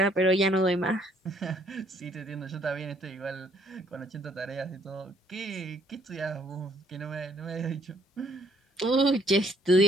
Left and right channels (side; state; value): both; normal; correlation 0.65